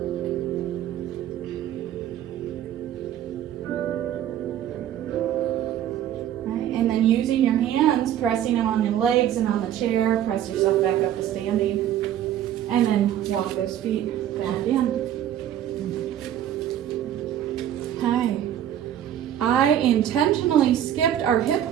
Right, and then using your hands, pressing them on your legs and on the chair, press yourself back up to standing. And then walk those feet back in. Okay. I intentionally skipped our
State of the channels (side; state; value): left; quieter; 11.0 dB